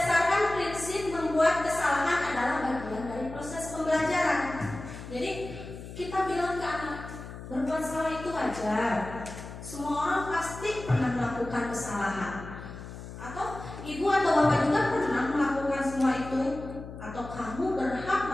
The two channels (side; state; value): left; noise; hum, 12 dB below the sound